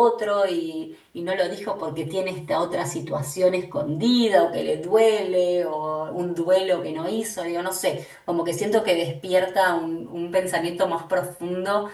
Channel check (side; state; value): both; identical; correlation 1.00